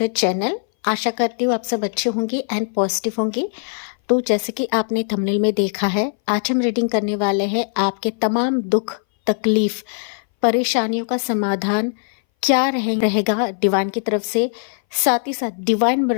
channel. आशा करती हूँ आप सब अच्छे होंगे एंड पॉजिटिव होंगे। तो जैसे कि आपने थंबनेल में देखा है, आज हम रीडिंग करने वाले हैं आपके तमाम दुख, तकलीफ, परेशानियों का समाधान क्या रहेगा डिवाइन की तरफ से। साथ ही साथ डिवाइन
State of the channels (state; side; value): silent; right; 61 dB below the other